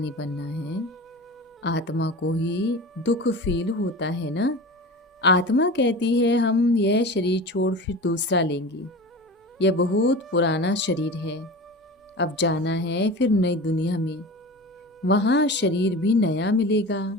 बनना है। आत्मा को ही दुख फील होता है ना। आत्मा कहती है हम यह शरीर छोड़ फिर दूसरा लेंगे। यह बहुत पुराना शरीर है, अब जाना है फिर नई दुनिया में, वहाँ शरीर भी नया मिलेगा।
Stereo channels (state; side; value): normal; both; correlation 0.32